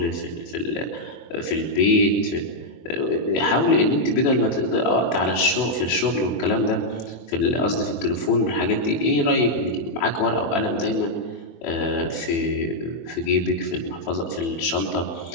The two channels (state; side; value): late; right; 24 ms